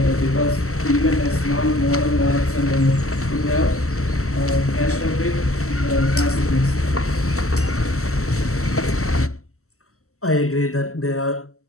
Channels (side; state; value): right; late; 0.63 ms